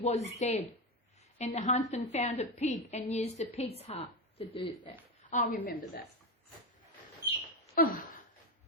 dead. And the huntsman found a pig and used the pig's heart to do that. I remember that.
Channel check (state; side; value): normal; both; correlation 0.14